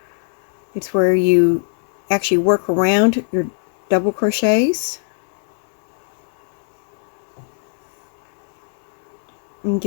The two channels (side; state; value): right; silent; 65 dB below the other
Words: It's where you actually work around your double crochets and